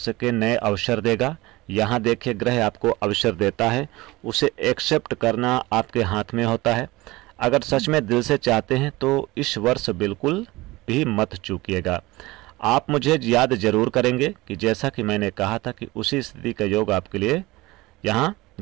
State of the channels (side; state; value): left; quieter; 20.6 dB